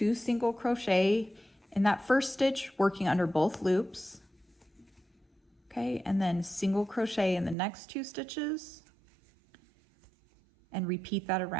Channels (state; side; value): drops out; left; at 7.6 s